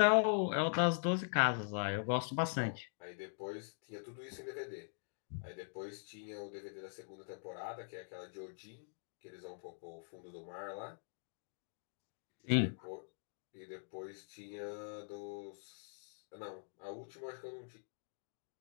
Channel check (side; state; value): right; silent; digital silence